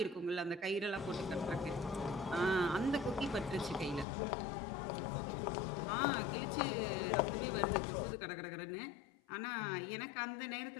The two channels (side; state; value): right; drops out; at 4.0 s